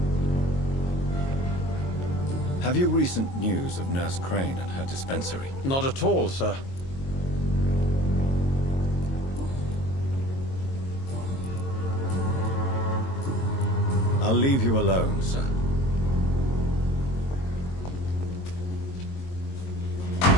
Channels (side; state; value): right; late; 22 ms